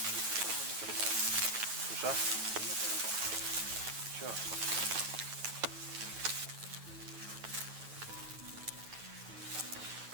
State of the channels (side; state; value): left; late; 9.3 ms